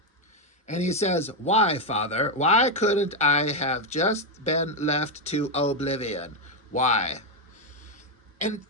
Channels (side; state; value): both; normal; correlation 0.04